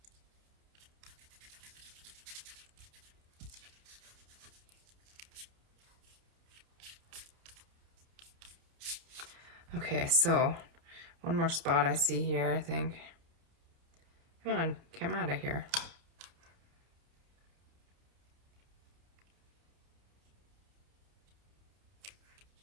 Okay, so one more spot I see here, I think. Come on, come out of here.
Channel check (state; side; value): late; left; 30 ms